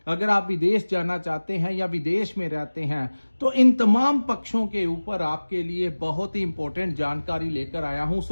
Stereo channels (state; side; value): inverted; both; correlation -1.00